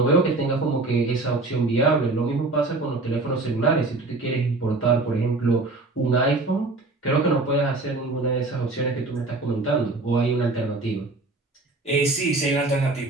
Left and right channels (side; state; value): left; quieter; 3.2 dB